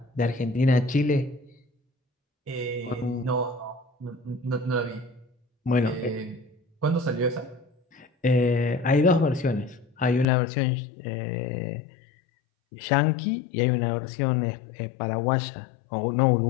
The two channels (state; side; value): drops out; right; at 10.2 s